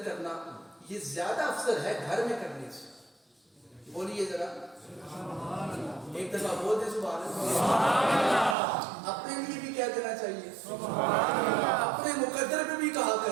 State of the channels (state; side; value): drops out; left; at 8.6 s